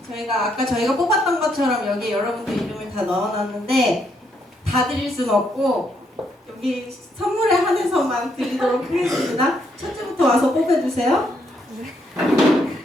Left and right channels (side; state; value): both; normal; correlation 0.75